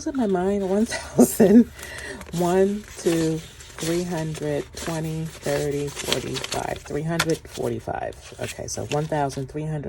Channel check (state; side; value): identical; both; correlation 1.00